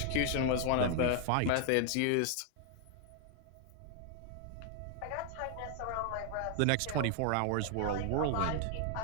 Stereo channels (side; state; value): both; different; correlation 0.00